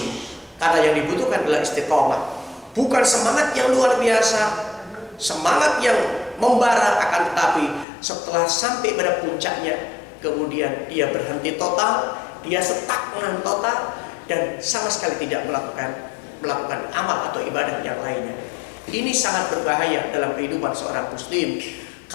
karena yang dibutuhkan adalah istiqomah, bukan semangat yang luar biasa, semangat yang membara, akan tetapi setelah sampai pada puncaknya, kemudian dia berhenti total, dia stagnan total, dan sama sekali tidak melakukan amal atau ibadah yang lainnya. Ini sangat berbahaya dalam kehidupan seorang muslim,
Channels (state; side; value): drops out; right; at 7.9 s